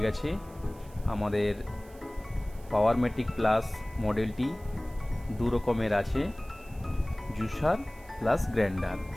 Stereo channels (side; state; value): right; noise; hiss, 25 dB below the sound